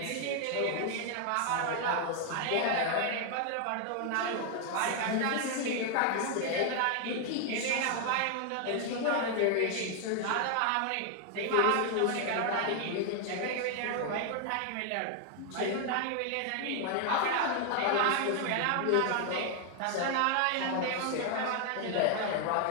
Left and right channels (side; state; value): both; different; correlation 0.00